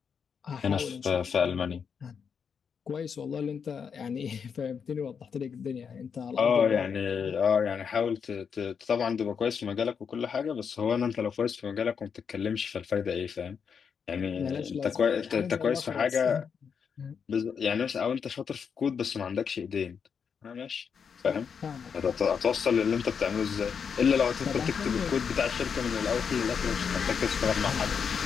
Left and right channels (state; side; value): quieter; right; 6.6 dB